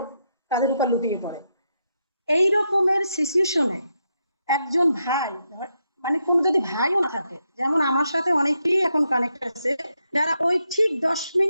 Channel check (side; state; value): both; inverted; correlation -0.82